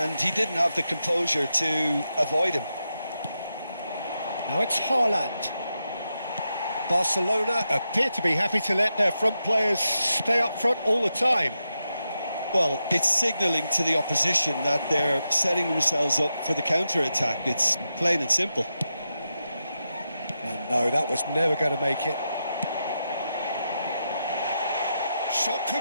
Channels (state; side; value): inverted; both; correlation -0.87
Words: he didn't have the composure to avoid him. Now it's Haaland. Barcelona appear to be happy to let their front players stay up front all the time. Well, it's signalling to the opposition that they're setting themselves up for the counter-attack. It's plain and simple. And no, that was never going to make it. Shot